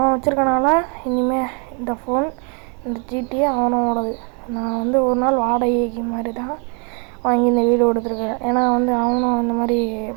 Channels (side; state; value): left; quieter; 37.4 dB